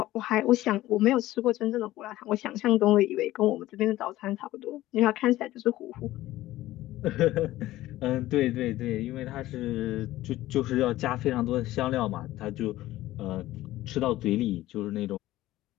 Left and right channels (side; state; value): right; quieter; 15.9 dB